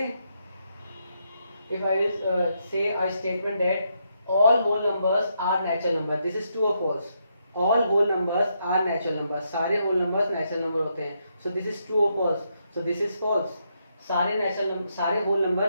हैं. If I say a statement that all whole numbers are natural number, this is true और false. All whole numbers are natural number, सारे होल नंबर्स नेचुरल नंबर होते हैं. सो दिस इज ट्रू और false. So this is false. सारे whole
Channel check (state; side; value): inverted; both; correlation -0.79